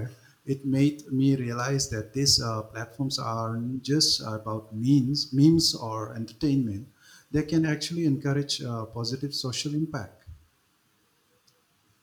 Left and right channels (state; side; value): identical; both; correlation 1.00